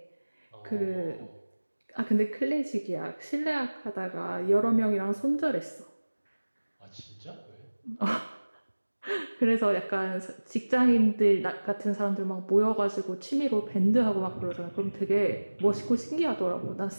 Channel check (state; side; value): inverted; both; correlation -1.00